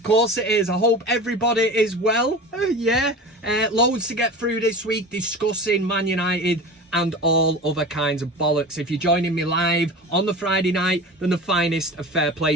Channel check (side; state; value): both; normal; correlation 0.33